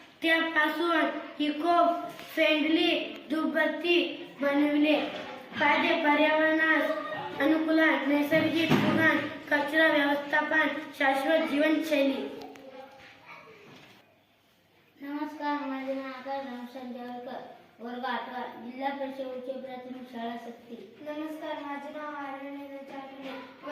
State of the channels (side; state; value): both; identical; correlation 1.00